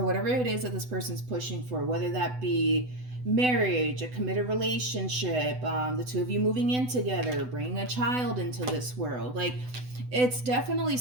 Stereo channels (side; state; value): left; late; 8.0 ms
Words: whatever it is that this person's pushing for, whether that be marriage, a committed relationship, the two of you moving in together, bringing a child into this world, like, it's definitely